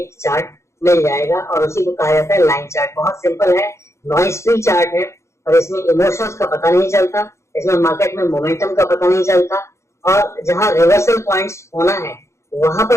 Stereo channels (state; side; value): late; right; 0.14 ms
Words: चार्ट मिल जाएगा, और उसी को कहा जाता है लाइन चार्ट। बहुत सिंपल है, नॉइज फ्री चार्ट है, और इसमें इमोशंस का पता नहीं चलता, इसमें मार्केट में मोमेंटम का पता नहीं चलता, और जहां रिवर्सल पॉइंट्स होना है वहां